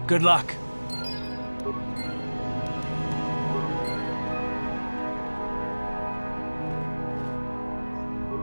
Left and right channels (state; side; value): inverted; both; correlation -1.00